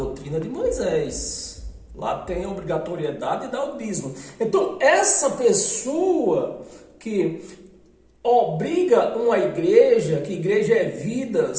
de Moisés. Lá tem a obrigatoriedade de dar o dízimo. Então, essa pessoa que obriga uma igreja, que igreja é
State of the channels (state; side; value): identical; both; correlation 1.00